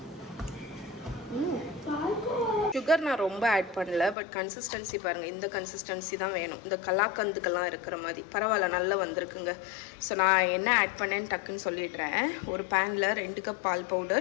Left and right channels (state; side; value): drops out; right; at 4.2 s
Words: சுகர் நான் ரொம்ப ஆட் பண்ணல, பட் கன்சிஸ்டன்சி பாருங்கள், இந்த கன்சிஸ்டன்சி தான் வேணும். இந்த கலாக்கந்துக்கெல்லாம் இருக்கிற மாதிரி பரவாயில்ல, நல்லா வந்திருக்குங்க. ஸோ நான் என்ன ஆட் பண்ணேன்னு டக்குன்னு சொல்லிடுறேன். ஒரு பேனில் 2 கப் பால்